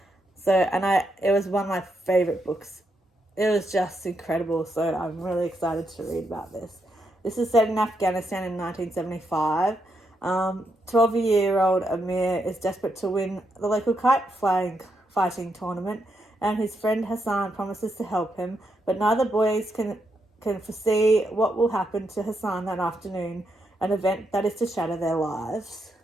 So, it was one of my favorite books. It was just incredible. So I'm really excited to read about this. This is set in Afghanistan in 1975. 12-year-old Amir is desperate to win the local kite fighting tournament, and his friend Hassan promises to help him, but neither boys can foresee what will happen to Hassan that afternoon, an event that is to shatter their lives.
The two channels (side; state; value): both; normal; correlation 0.81